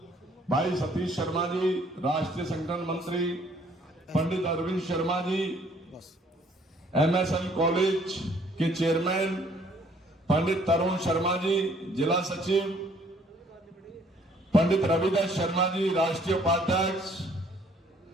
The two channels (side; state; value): both; normal; correlation 0.61